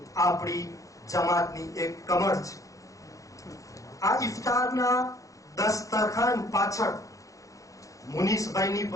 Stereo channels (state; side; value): late; right; 0.16 ms